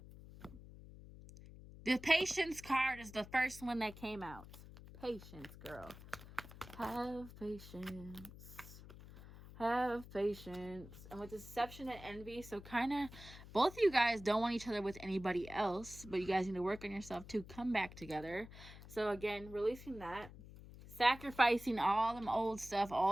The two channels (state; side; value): noise; left; hum, 16 dB below the sound